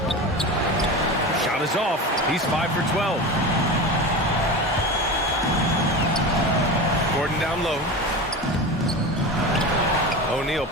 Shot is off. He's 5 for 12. Gordon down low. O'Neal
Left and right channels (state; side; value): normal; both; correlation 0.27